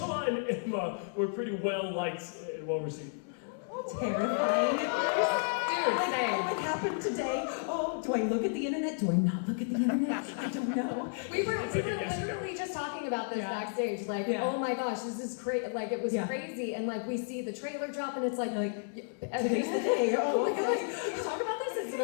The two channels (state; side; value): silent; right; 56 dB below the other